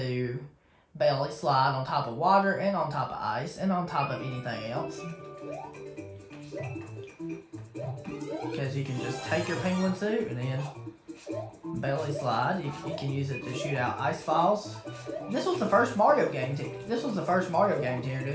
belly slide on top of water and on top of ice and on top of anything else. Because you can just take your penguin suit and then belly slide. You can use it to shoot out ice balls. This was the first Mario game to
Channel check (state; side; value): identical; both; correlation 1.00